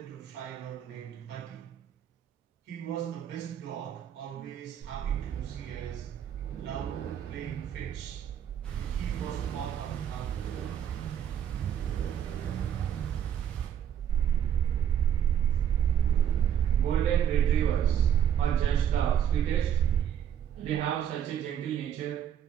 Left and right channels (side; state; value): left; quieter; 9.5 dB